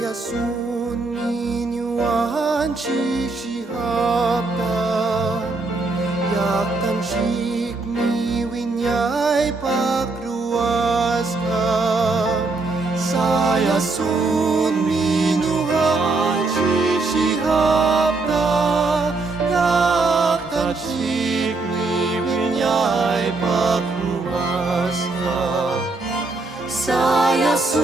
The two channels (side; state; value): left; quieter; 3.6 dB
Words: Yasun minuan shihapta Yak tanshik mi winyay pakruas ka Sayasun minuan shihapta Yak tanshik mi winyay pakruas ka